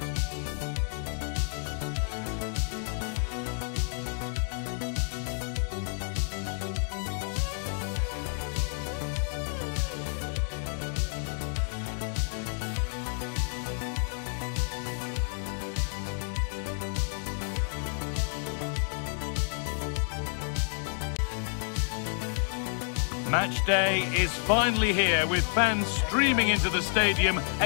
Match day is finally here, with fans streaming into the stadium.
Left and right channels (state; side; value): silent; right; 58 dB below the other